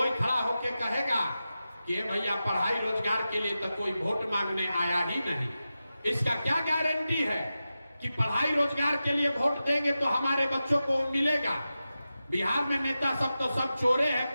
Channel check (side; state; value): both; inverted; correlation -0.92